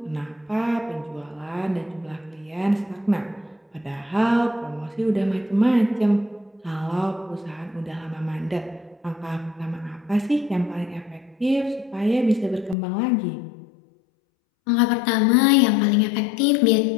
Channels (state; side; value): drops out; right; at 12.8 s